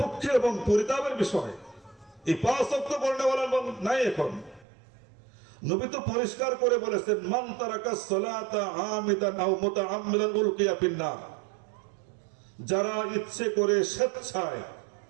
এবং পরিতাপের বিষয়, এই 5 ওয়াক্ত পড়নেওয়ালা নাই এখন। নবী তো পরিষ্কার করে বলেছেন, মান তারাকা সালাতা আমিদান আও মুতাআম্মিদান উলকিয়া ফিন্নার, যারা ইচ্ছে করে স্বেচ্ছায়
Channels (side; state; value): left; drops out; at 4.7 s